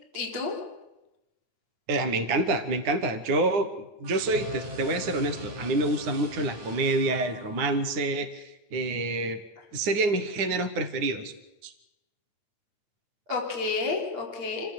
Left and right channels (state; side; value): late; left; 9.7 ms